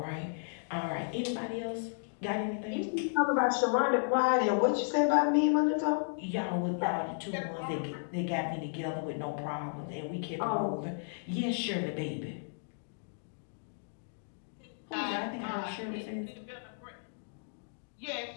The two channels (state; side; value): silent; right; digital silence